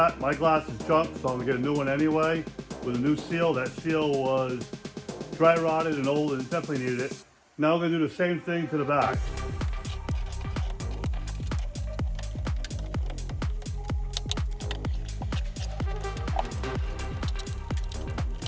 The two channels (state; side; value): identical; both; correlation 1.00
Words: My glass is junk, so I'm going to get a new one anyway with a new seal. That seal was dry rotted and old and definitely needed it. Now we're going to do the same thing to the back.